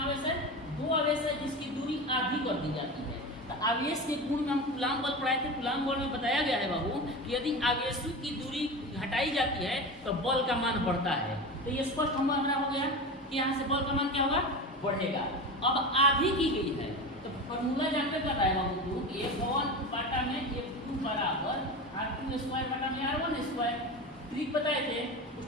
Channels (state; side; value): normal; both; correlation 0.26